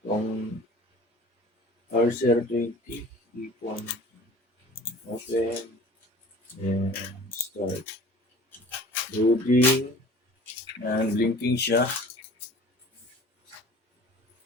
Itong R020, ipon. Open. Then, start. Loading. And blinking siya.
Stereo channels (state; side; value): normal; both; correlation 0.45